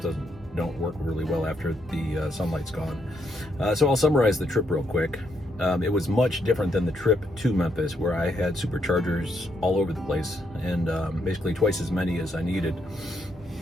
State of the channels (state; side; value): normal; both; correlation 0.77